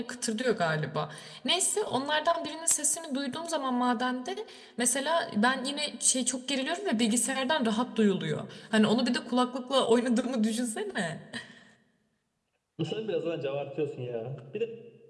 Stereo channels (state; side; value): identical; both; correlation 1.00